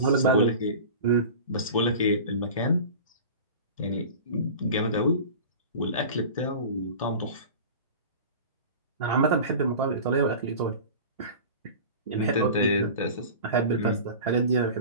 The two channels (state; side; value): inverted; both; correlation -0.36